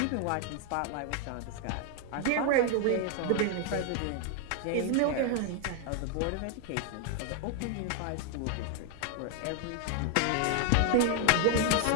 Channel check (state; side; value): different; both; correlation 0.00